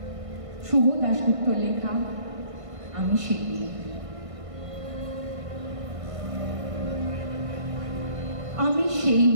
শুভ দাশগুপ্ত লেখা আমি সেই মেয়ে। আমি সেই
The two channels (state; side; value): late; left; 1.5 ms